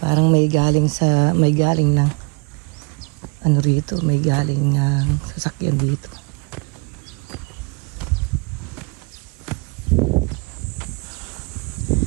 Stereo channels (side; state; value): left; quieter; 31.3 dB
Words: may galing ng ano rito, may galing sasakyan dito.